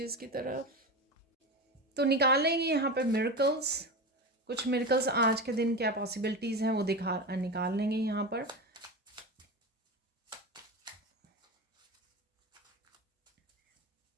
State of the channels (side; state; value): both; normal; correlation 0.23